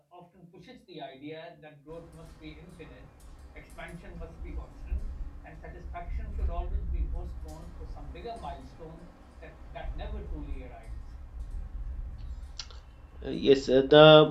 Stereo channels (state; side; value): identical; both; correlation 1.00